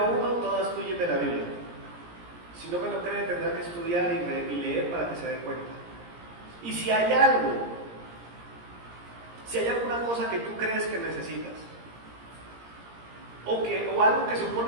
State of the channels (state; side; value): late; left; 17 ms